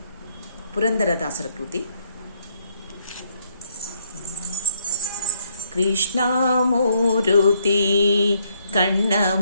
ಪುರಂದರದಾಸರ ಕೃತಿ. ಕೃಷ್ಣಮೂರುತಿ ಕಣ್ಣ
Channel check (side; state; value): both; inverted; correlation -0.73